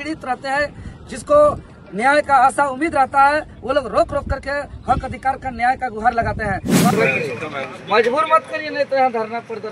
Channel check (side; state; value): both; identical; correlation 1.00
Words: रहते हैं, जिसको न्याय का आशा उम्मीद रहता है, वो लोग रोक रोक करके हक अधिकार का न्याय का गुहार लगाते हैं। मजबूर मत करिए, नहीं तो यहाँ धरना